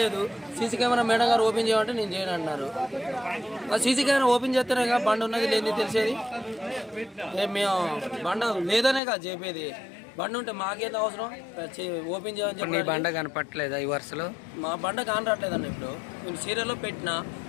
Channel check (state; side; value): drops out; right; at 9.0 s